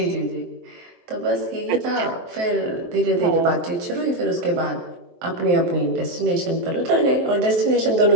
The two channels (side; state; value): left; late; 23 ms